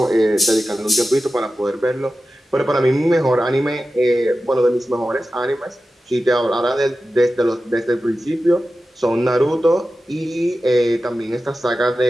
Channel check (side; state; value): both; normal; correlation 0.93